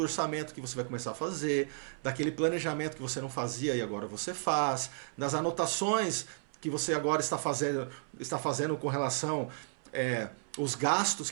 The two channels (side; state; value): left; silent; 56 dB below the other